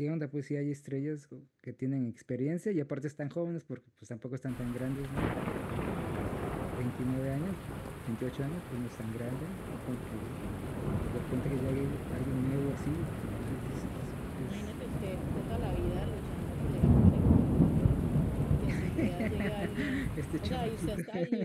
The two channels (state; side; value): identical; both; correlation 1.00